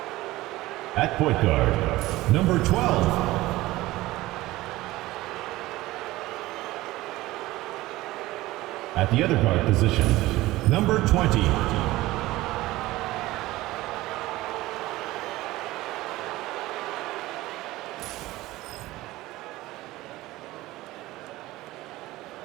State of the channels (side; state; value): left; quieter; 18.0 dB